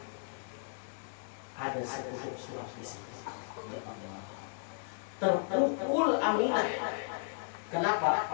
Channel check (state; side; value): silent; right; digital silence